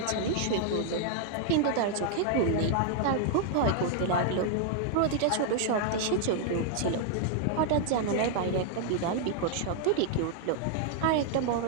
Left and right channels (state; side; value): different; both; correlation 0.00